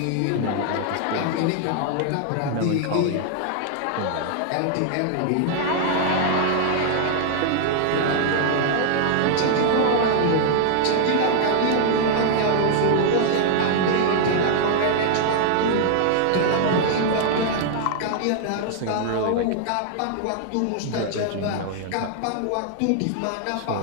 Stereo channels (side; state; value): both; different; correlation 0.00